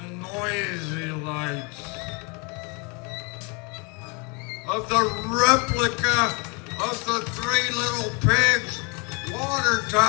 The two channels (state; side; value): quieter; right; 31.6 dB